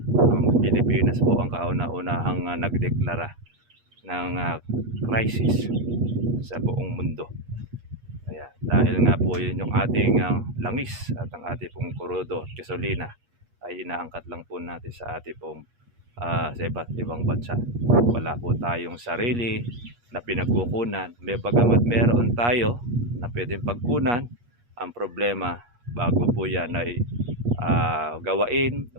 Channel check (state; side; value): late; left; 8.4 ms